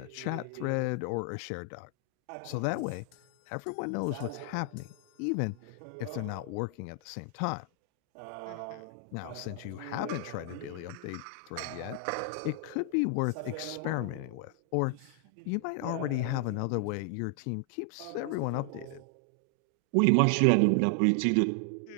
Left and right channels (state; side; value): different; both; correlation 0.00